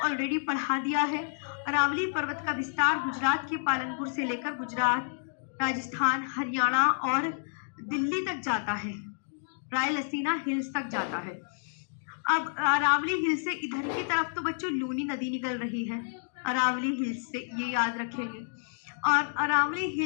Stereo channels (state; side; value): silent; right; digital silence